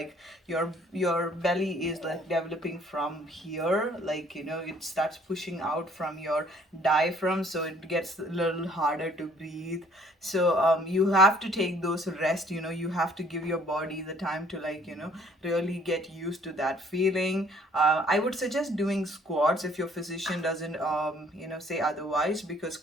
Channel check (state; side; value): normal; both; correlation 0.59